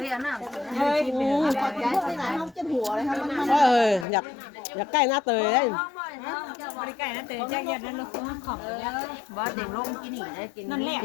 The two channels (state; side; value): drops out; right; at 4.0 s